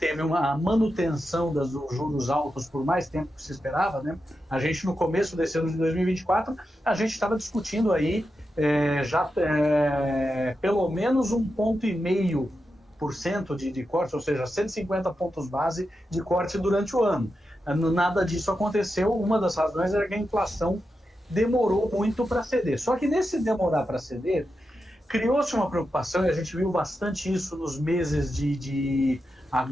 uma manutenção dos juros altos por mais tempo que se esperava, né? A gente, no começo desse ano de 2024, a gente estava discutindo aí pelo menos 1,5% de corte, ou seja, 150 pontos base de corte durante o ano. Nada disso aconteceu, uma das razões era que a inflação demorou muito para ceder. Só que nesse demorar para ceder, criou-se uma preocupação, e a gente viu bastante isso nos meses de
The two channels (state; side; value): normal; both; correlation 0.89